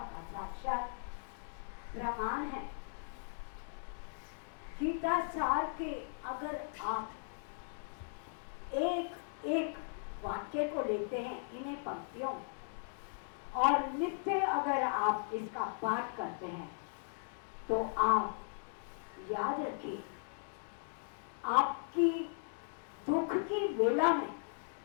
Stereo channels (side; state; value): right; silent; digital silence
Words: का साक्षात प्रमाण है। गीता सार के अगर आप एक एक वाक्य को लेते हैं, इन्हें पंक्तियों, और नित्य अगर आप इसका पाठ करते हैं, तो आप याद रखिए, आपकी दुख की वेला में